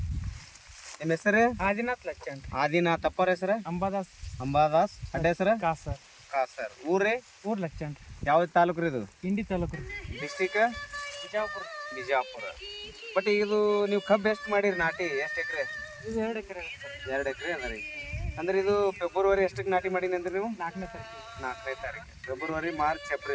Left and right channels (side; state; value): both; identical; correlation 1.00